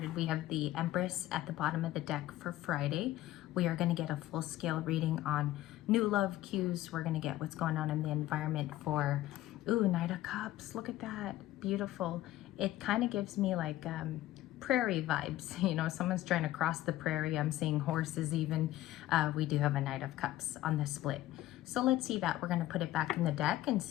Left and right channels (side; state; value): right; quieter; 14.8 dB